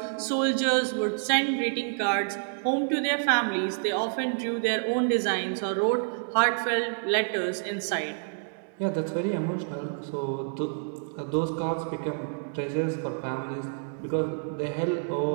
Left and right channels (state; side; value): silent; left; 59 dB below the other